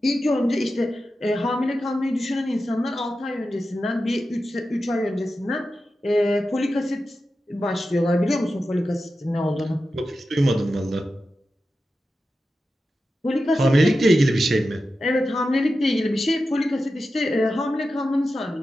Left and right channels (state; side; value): normal; both; correlation 0.92